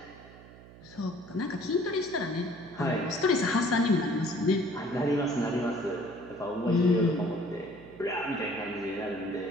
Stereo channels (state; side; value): noise; right; hum, 19 dB below the sound